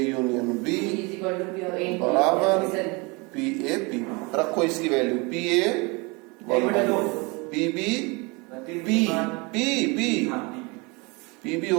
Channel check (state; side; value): quieter; left; 27.9 dB